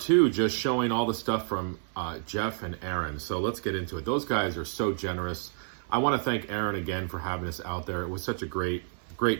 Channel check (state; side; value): silent; left; 58 dB below the other